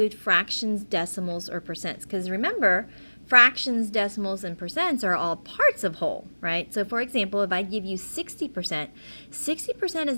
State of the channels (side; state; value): both; inverted; correlation -1.00